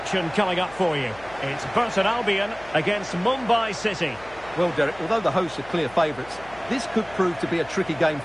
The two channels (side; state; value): left; noise; hum, 22 dB below the sound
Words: coming up for you. It's Burton Albion against Mumbai City. Well, Derek, although the hosts are clear favourites, this could prove to be a tricky game